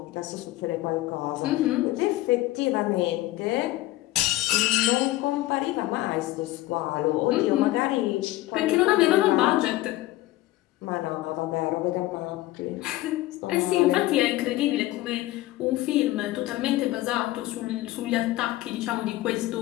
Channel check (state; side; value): quieter; right; 17.0 dB